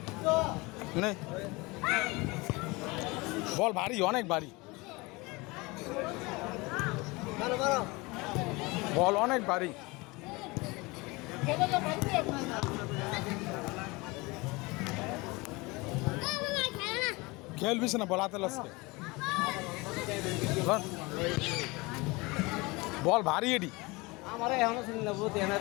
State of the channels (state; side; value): quieter; right; 24.5 dB